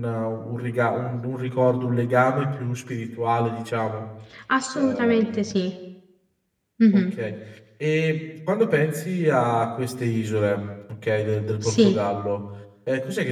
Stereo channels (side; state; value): both; identical; correlation 1.00